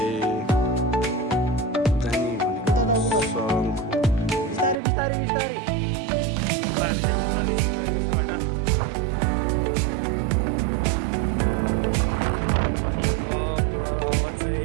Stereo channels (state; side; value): drops out; left; at 4.8 s